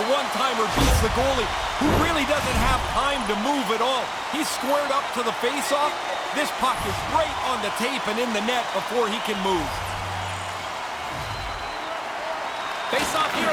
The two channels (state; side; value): identical; both; correlation 1.00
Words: one-timer beats the goalie, who really doesn't have time to move at all. He's squared up to the face-off. This puck is right on the tape and in the net before he can move. Face-off here